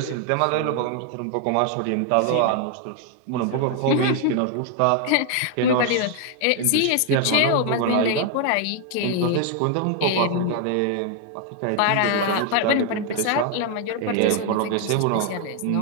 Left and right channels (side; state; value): both; different; correlation 0.00